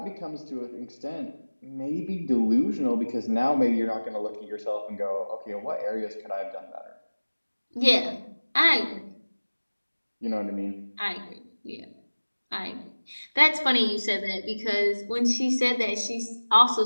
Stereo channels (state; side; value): inverted; both; correlation -1.00